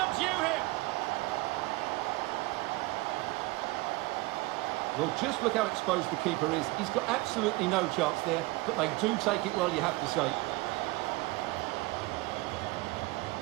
him. Well, just look how exposed the keeper is. He's got absolutely no chance there, but they do take it well, you have to say.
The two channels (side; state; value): left; quieter; 22.3 dB